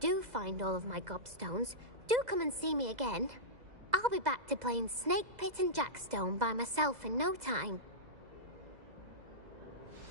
find all of my gobstones, do come and see me again. I'll be back to playing Snake Pit and Jackstone by myself in no time.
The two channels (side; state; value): left; late; 2.0 ms